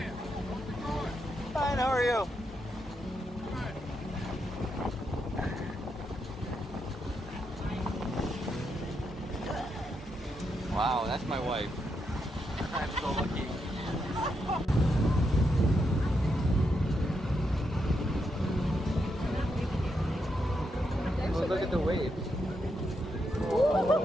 how's it going? Fine, how are you? Wow, that's my wife. I'm so lucky. Oh, look at the waves.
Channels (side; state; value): both; normal; correlation 0.82